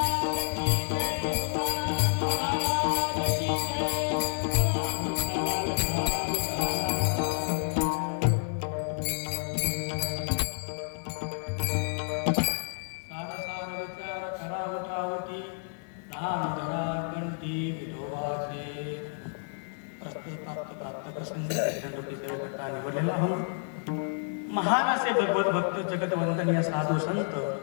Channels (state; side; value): silent; right; 58 dB below the other